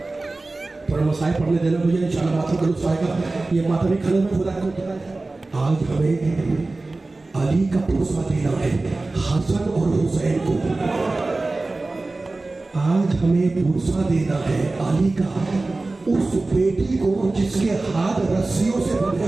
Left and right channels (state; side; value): quieter; left; 3.2 dB